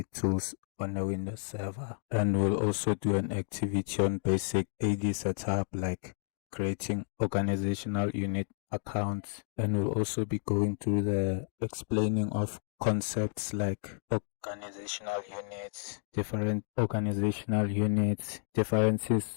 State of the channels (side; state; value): right; silent; digital silence